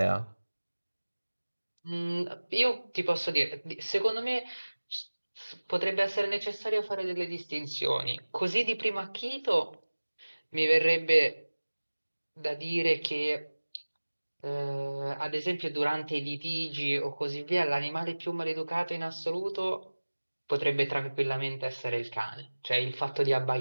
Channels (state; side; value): inverted; both; correlation -1.00